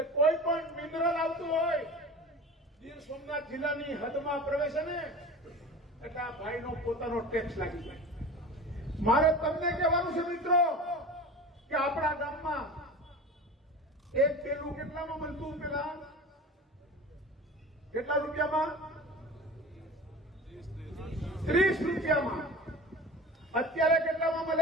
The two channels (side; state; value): both; normal; correlation 0.36